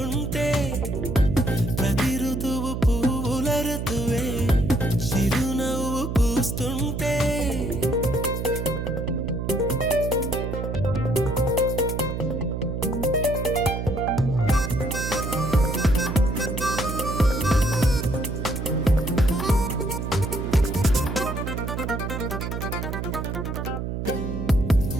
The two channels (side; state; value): right; noise; hum, 4 dB below the sound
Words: ప్రతి ఋతువు పువ్వుల ఋతువే చిరునవ్వు పూస్తుంటే